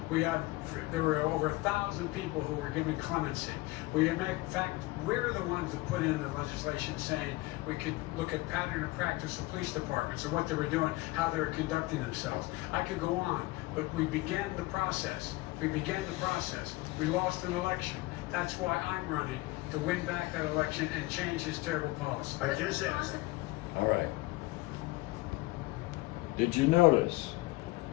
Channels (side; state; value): right; quieter; 20.6 dB